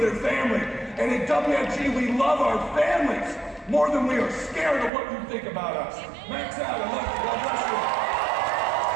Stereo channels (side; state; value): left; drops out; at 4.9 s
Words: their family. And at WFG, we love our families more than we are scared of what you think about us. Max out. I love you. God bless you.